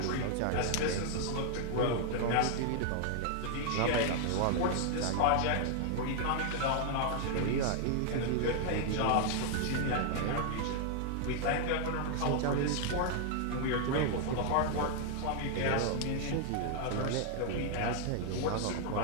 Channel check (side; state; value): both; different; correlation 0.00